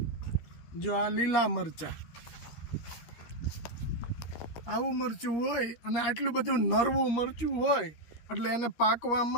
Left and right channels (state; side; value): late; right; 13 ms